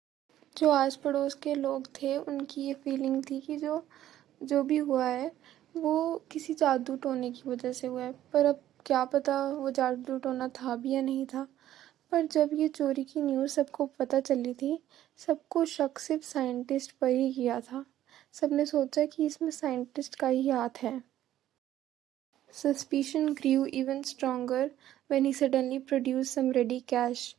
जो आस पड़ोस के लोग थे उनकी ये feeling थी कि जो भी हुआ है वो किसी जादू टोने की वजह से हुआ है, पर अब क्या पता वो जादू टोना था भी या नहीं था। पर जब ये चोरी की न्यूज़ सबको पता चली थी, सबको शक सिर्फ साइंटिस्ट पर ही किया था। सबने सोचा कि इसमें साइंटिस्ट का ही हाथ है। Suspicion grew even stronger when he suddenly produced some ready cash,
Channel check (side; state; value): left; quieter; 12.6 dB